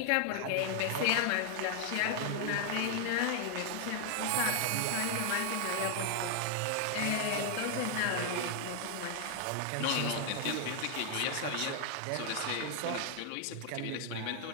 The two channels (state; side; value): different; both; correlation 0.00